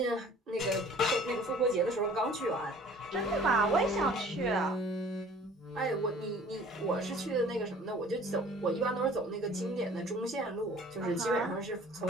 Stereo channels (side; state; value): both; normal; correlation 0.50